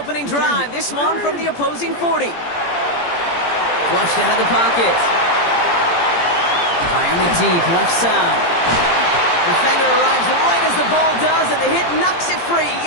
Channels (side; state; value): right; late; 17 ms